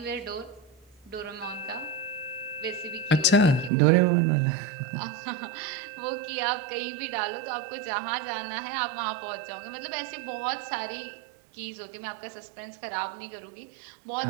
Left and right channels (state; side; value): drops out; left; at 3.7 s